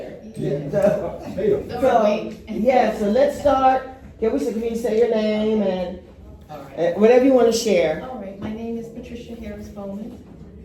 So let's start. Can you say your name and whatever you want to share? All right, my name is Patricia Harris Bowman.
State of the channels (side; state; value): both; identical; correlation 1.00